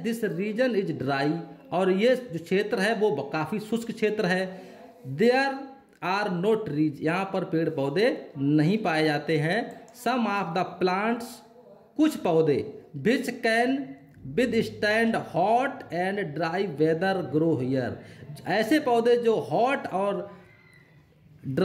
region is dry, और ये जो क्षेत्र है वो काफ़ी शुष्क क्षेत्र है। देयर आर नो ट्रीज, यहाँ पर पेड़ पौधे नहीं पाए जाते हैं। सम ऑफ द प्लांट्स, कुछ पौधे, which can withstand hot and dry weather grow here, ऐसे पौधे जो हॉट और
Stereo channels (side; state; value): both; identical; correlation 1.00